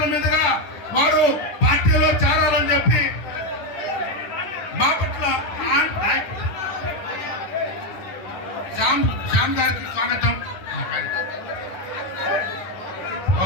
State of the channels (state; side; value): late; right; 10 ms